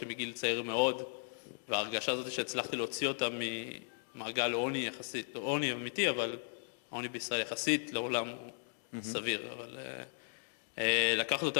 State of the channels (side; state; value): right; silent; digital silence